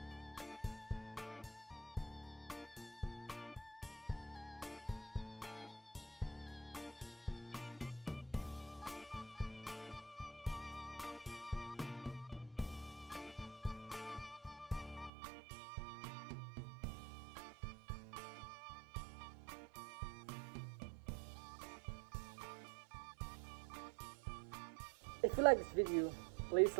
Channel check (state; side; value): drops out; left; at 15.1 s